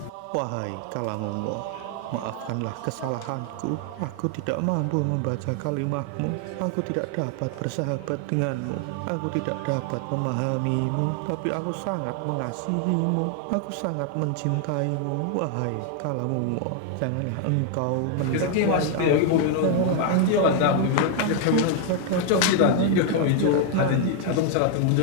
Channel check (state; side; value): different; both; correlation 0.00